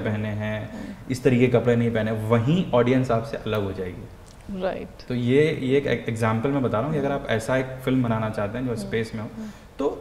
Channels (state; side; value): identical; both; correlation 1.00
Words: हैं, इस तरीके के कपड़े नहीं पहने, वहीं ऑडियंस आपसे अलग हो जाएगी। राइट। तो ये एक एग्जाम्पल मैं बता रहा हूँ कि अगर आप ऐसा एक फिल्म बनाना चाहते हैं जो स्पेस में हो,